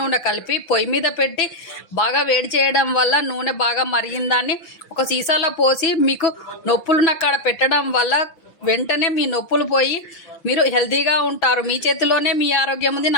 కలిపి పొయ్యి మీద పెట్టి బాగా వేడి చేయడం వల్ల నూనె బాగా మరిగిన దాన్ని ఒక సీసాలో పోసి మీకు నొప్పులున్న కాడ పెట్టడం వల్ల వెంటనే మీ నొప్పులు పోయి మీరు హెల్తీగా ఉంటారు. మీ చేతిలోనే మీ ఆరోగ్యం ఉంది.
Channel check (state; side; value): late; right; 6.0 ms